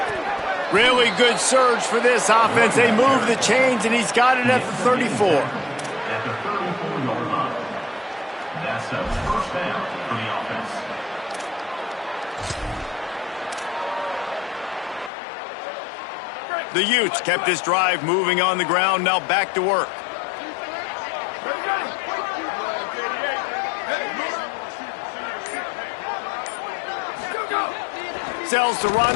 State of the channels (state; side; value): drops out; right; at 15.1 s